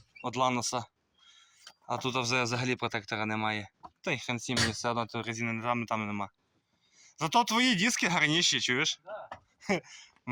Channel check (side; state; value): both; identical; correlation 1.00